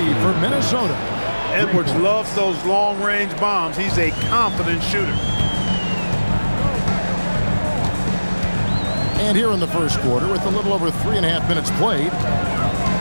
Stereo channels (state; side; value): inverted; both; correlation -1.00